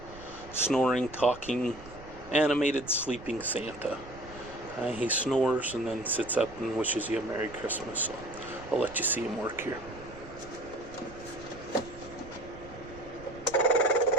snoring, talking, animated sleeping Santa. He snores and then sits up and wishes you a Merry Christmas, so I'll let you see him work here.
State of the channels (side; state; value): right; noise; rumble, 17 dB below the sound